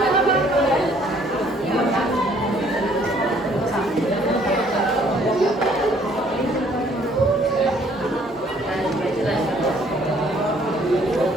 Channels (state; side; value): normal; both; correlation 0.61